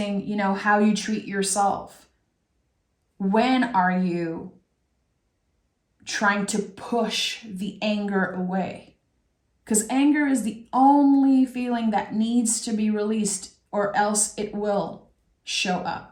how you treat yourself. When are you trying to push the anger away? Because anger is the only feeling that needs to be released, or else it will show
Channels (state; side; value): identical; both; correlation 1.00